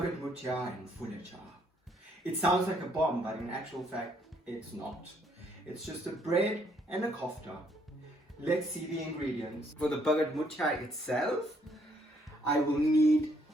Moothia and fooletcha. It sounds like a bomb, but in actual fact, it's not. It's just a bread and a kofta. Let's see the ingredients. For the Bhagat Moothia itself, I will need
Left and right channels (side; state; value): both; normal; correlation 0.69